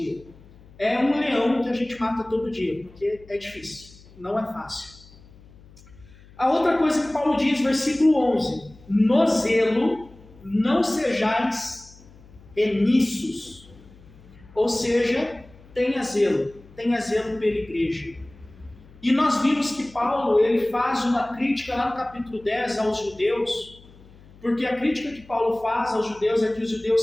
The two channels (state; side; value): noise; left; hum, 24 dB below the sound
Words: É um leão que a gente mata todo dia, porque é difícil, não é fácil. A outra coisa que Paulo diz, versículo 11: no zelo não sejais remissos, ou seja, tenha zelo pela igreja. E nós vimos que Paulo ele faz uma crítica lá no capítulo 10 aos judeus, porque a crítica que Paulo faz aos judeus é que os